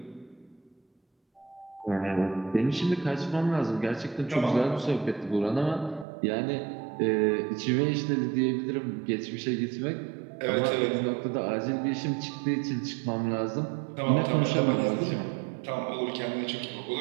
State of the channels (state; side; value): drops out; left; at 6.1 s